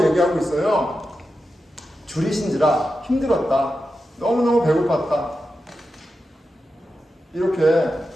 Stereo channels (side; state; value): both; normal; correlation 0.90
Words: 얘기하고 있어요? 줄이신지라 힘들었다. 너무너무 배고팠다. 이렇게